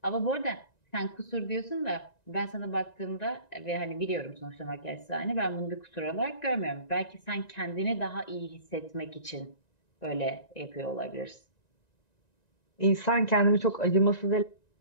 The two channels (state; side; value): late; right; 1.9 ms